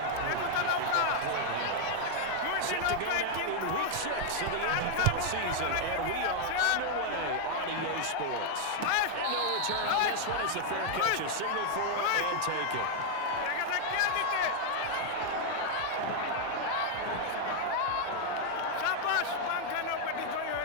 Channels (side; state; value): both; different; correlation 0.00